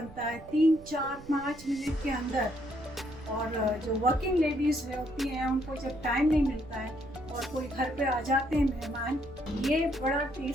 है 3-4-5 मिनट के अंदर। और जो वर्किंग लेडीज़ होती हैं उनको जब टाइम नहीं मिलता है और कोई घर पे आ जाते हैं मेहमान, ये बड़ा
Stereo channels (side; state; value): right; noise; rumble, 18 dB below the sound